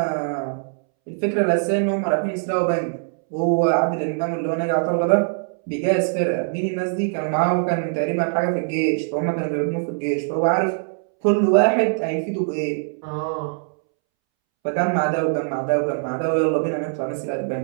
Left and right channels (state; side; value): silent; left; 64 dB below the other